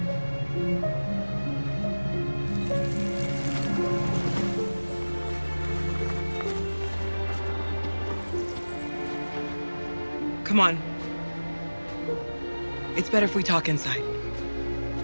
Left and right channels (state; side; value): inverted; both; correlation -1.00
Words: Come on. It's better if we talk inside.